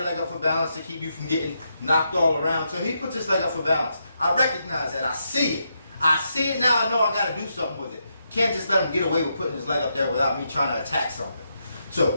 leg up for balance to keep you from getting knocked all around. So he puts his leg up for balance. I recognize that. I see it. I see it now. I know I got to do something with it. Can't just let him get away with putting his leg up there without me trying to attack something. So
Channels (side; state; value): both; inverted; correlation -0.82